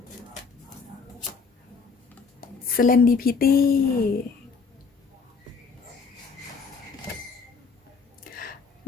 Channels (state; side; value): quieter; right; 5.1 dB